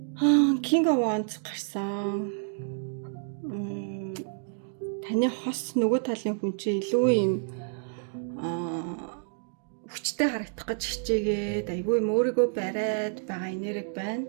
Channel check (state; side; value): silent; left; digital silence